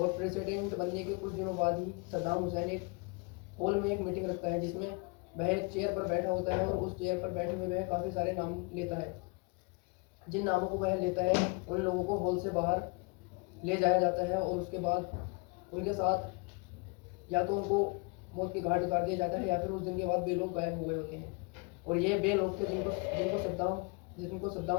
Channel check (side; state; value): right; quieter; 31.3 dB